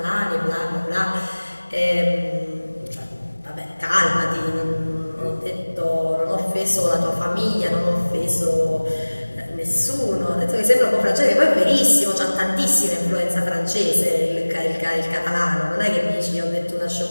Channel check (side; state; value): both; inverted; correlation -1.00